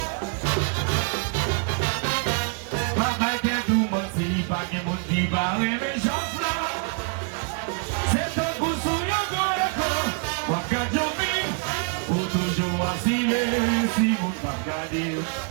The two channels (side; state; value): left; quieter; 39.4 dB